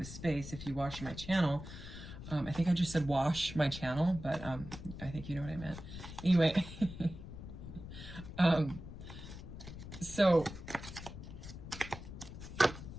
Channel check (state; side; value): noise; left; rumble, 11 dB below the sound